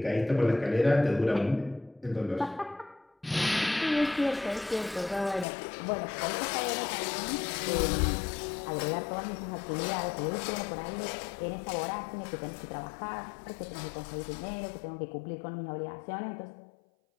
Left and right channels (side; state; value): right; drops out; at 5.5 s